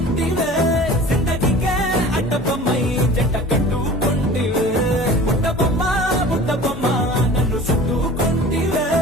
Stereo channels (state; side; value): normal; both; correlation 0.41